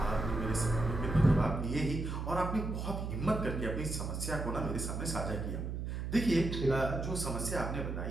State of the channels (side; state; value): right; noise; hum, 4 dB below the sound